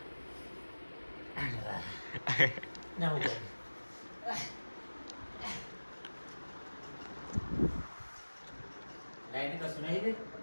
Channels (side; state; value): both; inverted; correlation -1.00